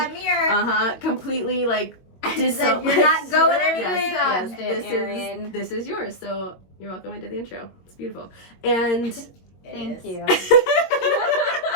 mirror. Completely like Said, you're not going anywhere. Yes, this is yours. So you're welcome. I did the intro. It's beautiful. And Thank you.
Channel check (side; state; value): right; late; 22 ms